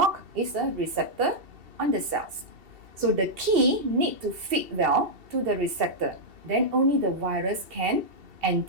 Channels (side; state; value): left; late; 2.7 ms